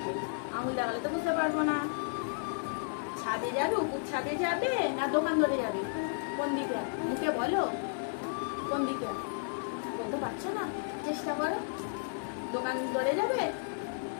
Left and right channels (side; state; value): right; silent; digital silence